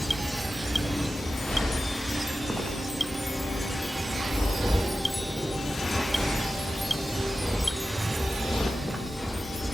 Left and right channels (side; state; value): both; normal; correlation 0.94